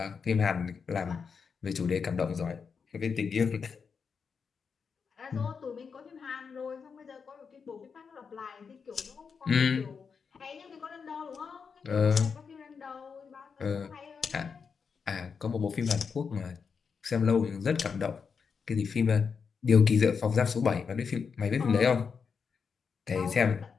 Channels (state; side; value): quieter; right; 5.8 dB